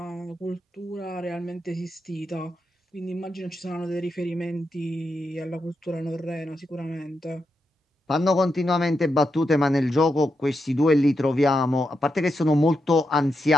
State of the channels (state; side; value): normal; both; correlation 0.85